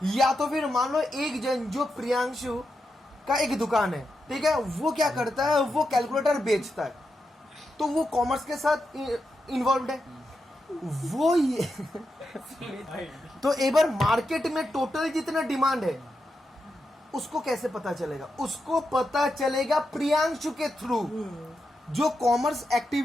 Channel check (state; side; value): normal; both; correlation 0.86